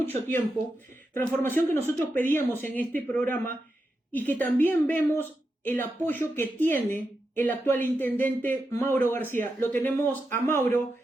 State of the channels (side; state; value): both; normal; correlation 0.87